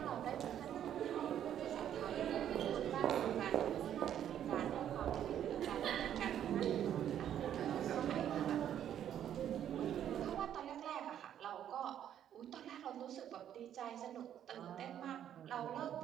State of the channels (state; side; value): quieter; left; 10.2 dB